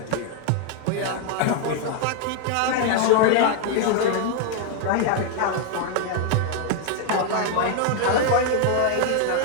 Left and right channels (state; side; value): different; both; correlation 0.00